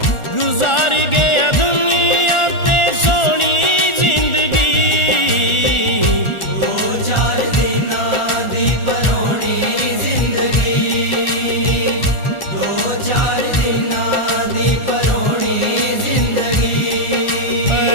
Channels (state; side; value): late; right; 1.4 ms